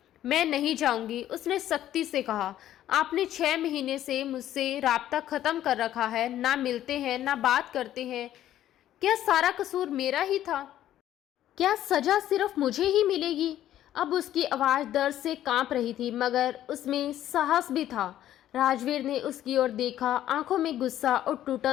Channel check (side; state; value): right; quieter; 12.3 dB